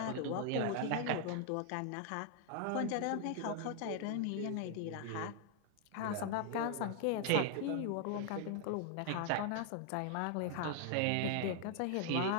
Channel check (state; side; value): different; both; correlation 0.00